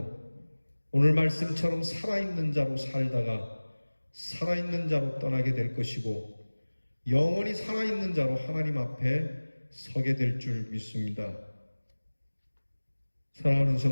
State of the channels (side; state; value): both; inverted; correlation -1.00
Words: 오늘 말씀처럼 살아있는 자로 살다가 살아있는 자로 떠나게 될 것이고, 영원히 살아있는 자로 하나님 앞에 서게 될 줄 믿습니다. 사랑하는